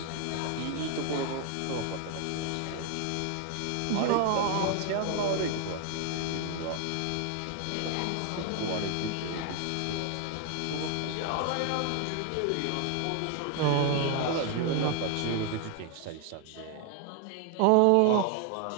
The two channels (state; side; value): different; both; correlation 0.00